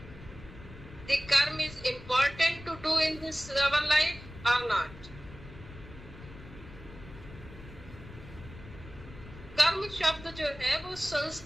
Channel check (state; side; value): noise; left; rumble, 16 dB below the sound